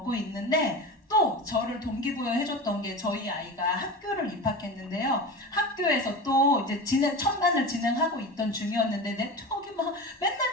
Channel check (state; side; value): normal; both; correlation 0.28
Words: 있는데 또 저를 동기부여 해줬던 게 저희 아이가 학교를 입학했는데요. 학교에서 또 이제 천만을 진행하고 있던 중이었는데 네트워크가 막 맨날